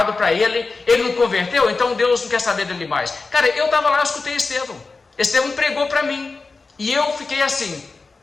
para ele não converteu, então Deus não quer saber dele mais. Cara, eu estava lá, eu escutei Estevão pregou para mim, e eu fiquei assim,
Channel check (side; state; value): right; quieter; 4.0 dB